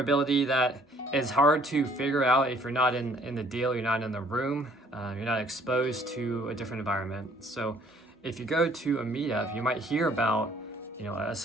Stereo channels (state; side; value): normal; both; correlation 0.60